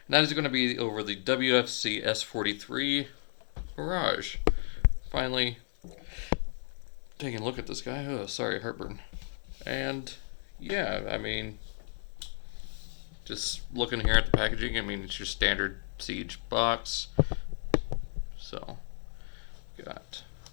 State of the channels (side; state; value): right; silent; 56 dB below the other